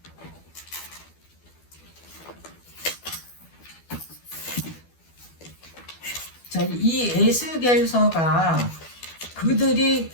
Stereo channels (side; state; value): right; late; 12 ms